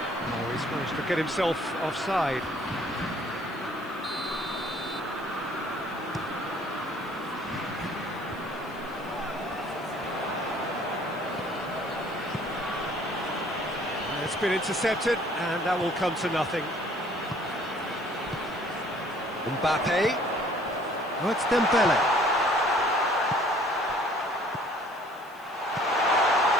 he's managed to get himself offside. It's been intercepted, and that will come to nothing. Mbappe. Oh, it's Dembele.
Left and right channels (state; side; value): noise; left; hiss, 26 dB below the sound